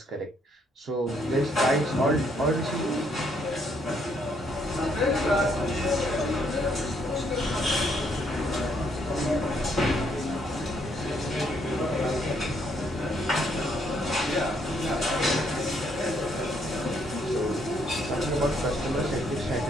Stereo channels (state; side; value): normal; both; correlation 0.70